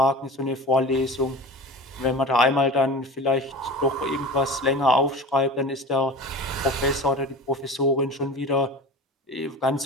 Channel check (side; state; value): both; normal; correlation 0.34